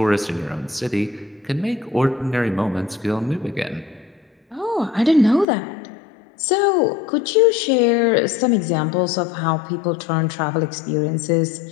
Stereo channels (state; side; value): drops out; right; at 5.5 s